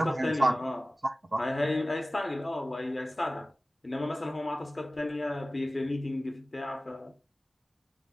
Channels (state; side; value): normal; both; correlation 0.97